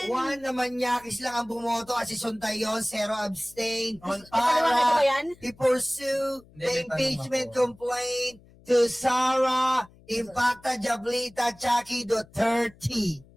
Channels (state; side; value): noise; left; hum, 26 dB below the sound